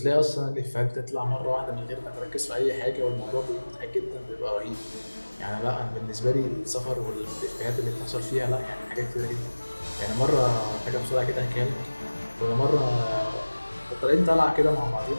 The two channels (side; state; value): both; inverted; correlation -1.00